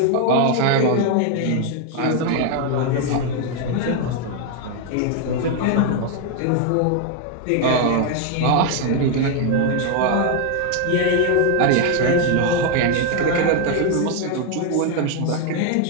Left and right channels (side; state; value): both; different; correlation 0.01